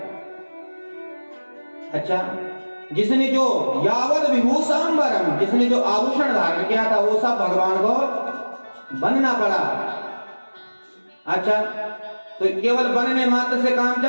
अच्छा, जिसने जो यावद विभूषांबरम जिसने जो आभूषण धारण किया था वो सब भगवान को बनना पड़ा। अच्छा, तो केवल बनने मात्र से काम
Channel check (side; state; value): both; inverted; correlation -1.00